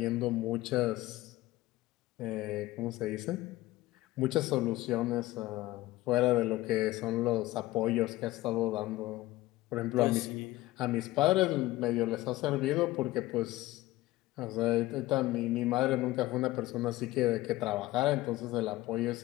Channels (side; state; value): right; quieter; 17.7 dB